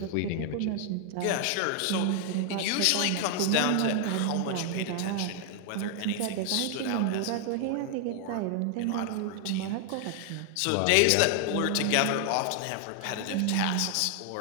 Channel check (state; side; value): different; both; correlation 0.00